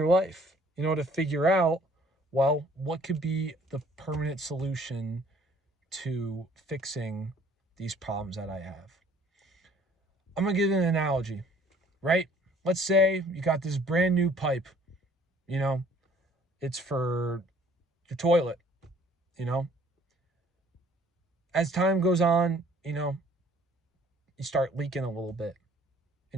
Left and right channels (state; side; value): normal; both; correlation 0.57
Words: life, to figure out, well, what could be the permanent solution to fixing these problems that I have. I'm going to give an analogy, right? Let's say you got this brand new pipe, it's for your toilet, As time goes on, you start leaking a little bit.